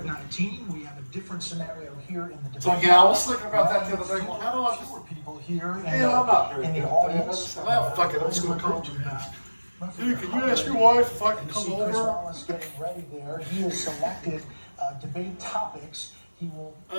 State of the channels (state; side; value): inverted; both; correlation -1.00